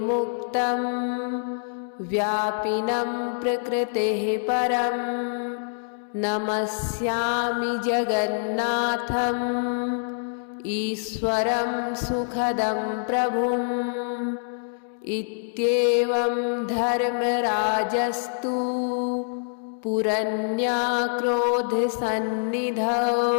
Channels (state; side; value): silent; right; digital silence